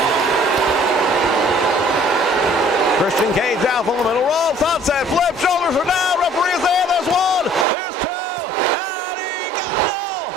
Christian Cage out from the middle rope. Sunset flip. Shoulders are down. Referee is there. There's one. There's two. And he got no.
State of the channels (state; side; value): drops out; left; at 7.7 s